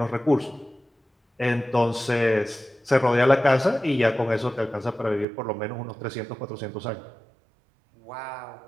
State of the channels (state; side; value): drops out; left; at 5.2 s